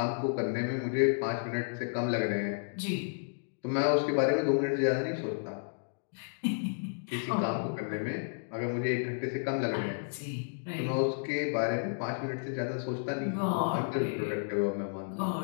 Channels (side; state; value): right; silent; digital silence